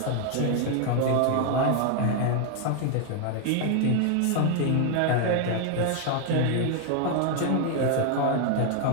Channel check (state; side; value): different; both; correlation 0.00